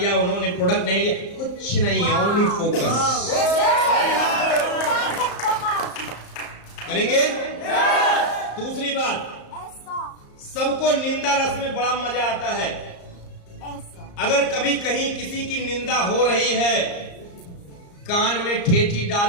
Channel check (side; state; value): right; late; 34 ms